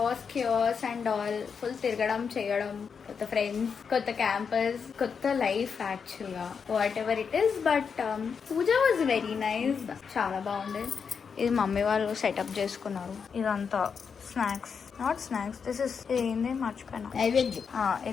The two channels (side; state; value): right; quieter; 6.2 dB